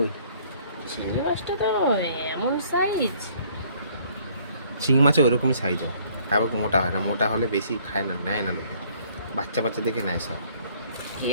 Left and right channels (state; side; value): inverted; both; correlation -0.61